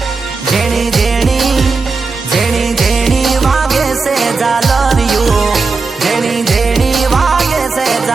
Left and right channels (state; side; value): quieter; left; 4.3 dB